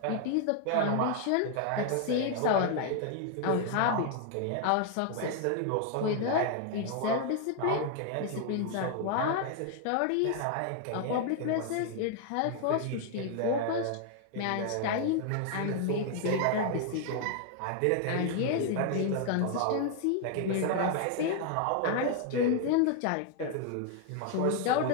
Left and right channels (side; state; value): both; different; correlation 0.00